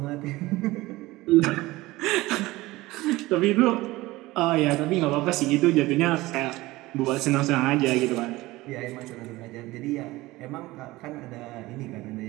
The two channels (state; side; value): quieter; left; 19.3 dB